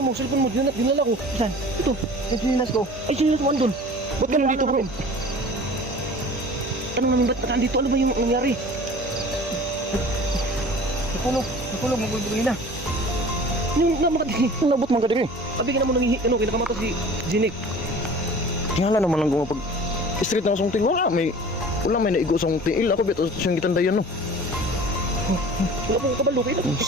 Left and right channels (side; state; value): both; normal; correlation 0.43